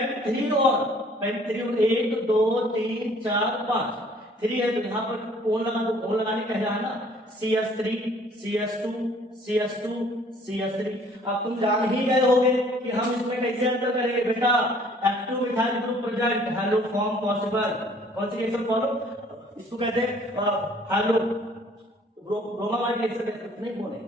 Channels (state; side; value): normal; both; correlation 0.57